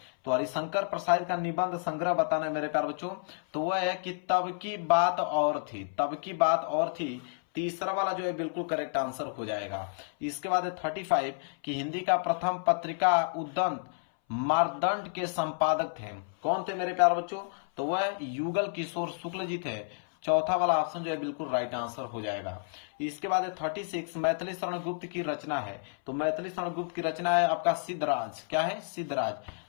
तो हरिशंकर परसाई का निबंध संग्रह बताना है मेरे प्यारे बच्चों। तो वह है कि तब की बात और थी, तब की बात और थी। तीसरा वाला जो है बिल्कुल करेक्ट आंसर हो जाएगा। इसके बाद है 35 कि हिंदी का प्रथम पत्रिका उद्दंत मारदंड के संपादक थे। कौन थे मेरे प्यारे बच्चों? तो वह युगल किशोर शुक्ल जी थे। चौथा वाला ऑप्शन जो है बिल्कुल राइट आंसर हो जाएगा। इसके बाद है 36 मैथिली शरण गुप्त की रचना है। तो मैथिली शरण गुप्त की रचना है आपका सिद्धराज। क्या है? सिद्धराज।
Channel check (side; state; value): right; silent; 57 dB below the other